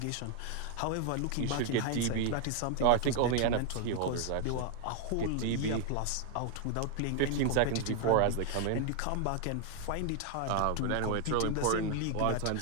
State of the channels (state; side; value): different; both; correlation 0.00